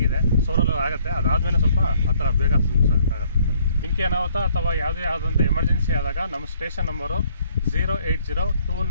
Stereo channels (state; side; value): inverted; both; correlation -0.64